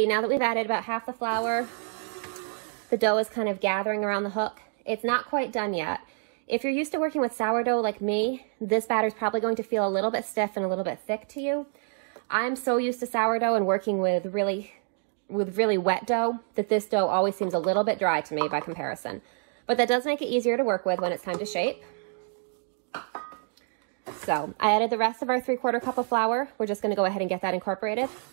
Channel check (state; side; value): silent; left; 55 dB below the other